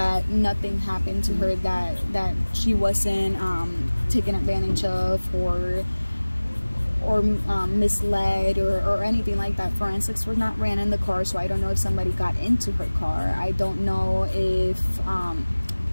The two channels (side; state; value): both; inverted; correlation -1.00